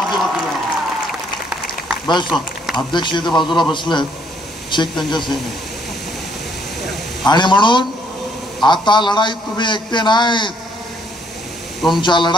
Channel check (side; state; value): both; normal; correlation 0.68